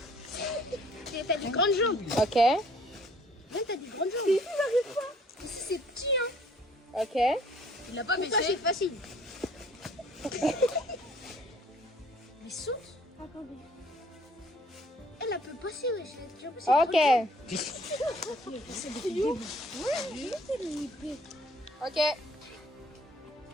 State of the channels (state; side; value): normal; both; correlation 0.58